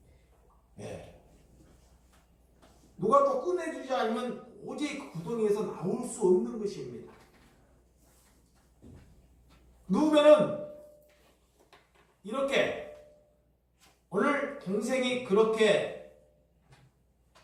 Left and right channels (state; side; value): identical; both; correlation 1.00